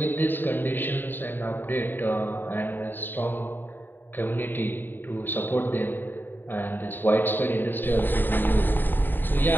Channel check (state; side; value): late; right; 0.093 ms